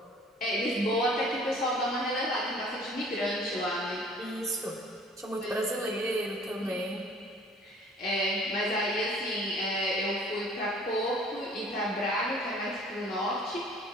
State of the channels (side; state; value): both; normal; correlation 0.52